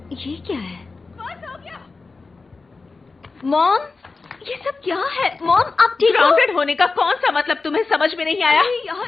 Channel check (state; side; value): quieter; right; 4.0 dB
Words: ये क्या है? मॉम, ये सब क्या है? मॉम, आप ठीक हो? ग्राउंडेड होने का कौन सा मतलब तुम्हें समझ में नहीं आया? अरे